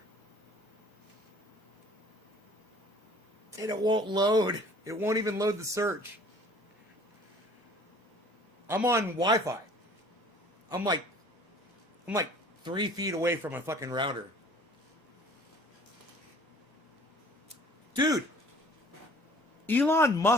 And it won't load. It won't even load the search. I'm on Wi-Fi. I'm like 3 feet away from a fucking router. Dude, Elon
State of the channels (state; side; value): normal; both; correlation 0.51